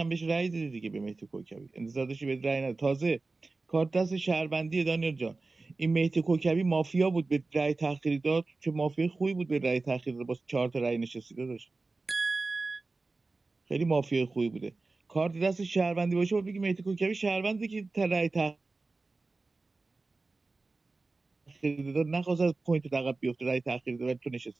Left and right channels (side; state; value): left; quieter; 3.6 dB